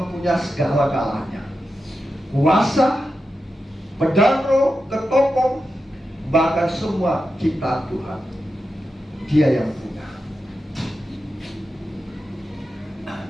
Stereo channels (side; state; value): both; normal; correlation 0.90